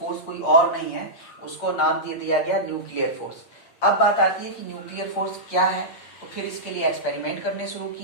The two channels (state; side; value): late; right; 8.6 ms